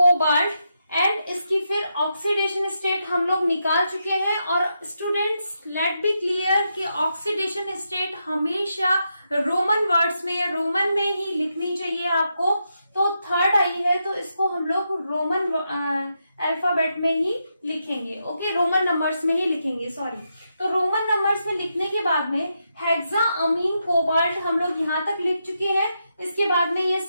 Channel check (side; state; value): both; inverted; correlation -0.84